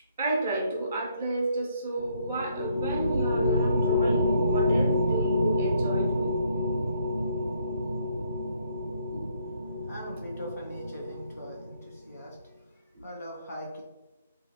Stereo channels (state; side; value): inverted; both; correlation -0.70